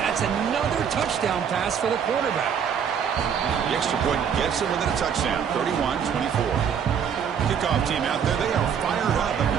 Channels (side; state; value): left; quieter; 7.6 dB